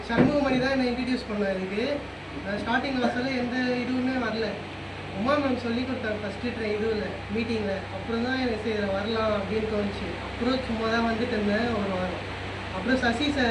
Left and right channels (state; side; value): identical; both; correlation 1.00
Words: சண்முகமணி தான் என்னை இன்ட்ரடியூஸ் பண்ணேன். இதுக்கு நான் ஸ்டார்டிங் கிளாஸில் எந்த இதுவுமே வரல. உமா மேம் சொல்லி கொடுத்தாங்க ஃபஸ்ட்டு இதுவில் மீட்டிங்கில். அப்புறம் தான் எனக்கு இதில் வரலாம் அப்படின்னு தோணுச்சு. அப்புறம் சும்மா தான் வந்துட்டு இருந்தேன் ஒரு வாரம். அப்புறம் சசி